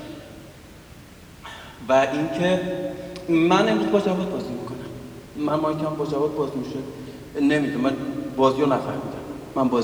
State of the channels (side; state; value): both; identical; correlation 1.00